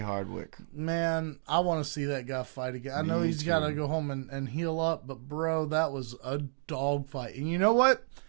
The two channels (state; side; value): silent; left; digital silence